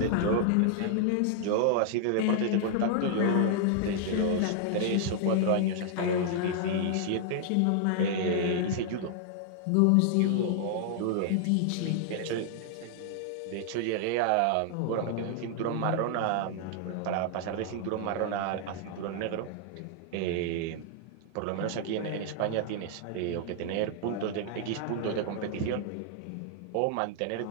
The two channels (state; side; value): different; both; correlation -0.01